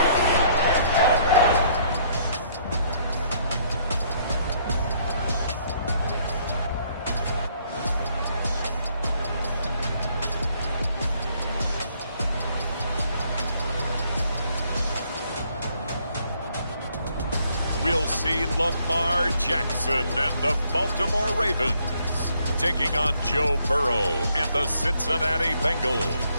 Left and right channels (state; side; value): inverted; both; correlation -0.67